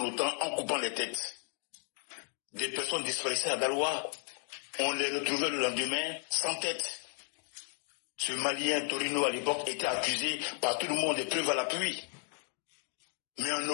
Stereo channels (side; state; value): right; silent; 55 dB below the other